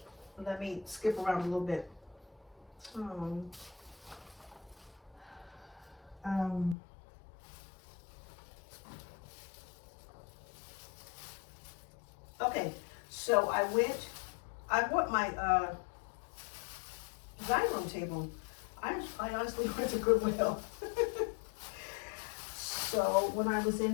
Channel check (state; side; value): drops out; right; at 6.8 s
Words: let me skip around a little bit. Okay, so I bought my dining room table. I honestly went to Goodwill. So when I was